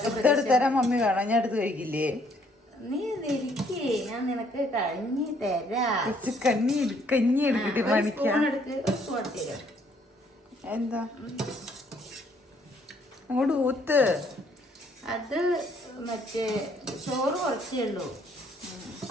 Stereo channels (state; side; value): normal; both; correlation 0.66